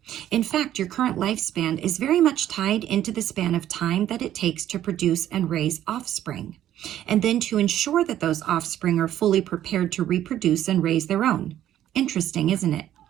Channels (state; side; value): quieter; left; 11.9 dB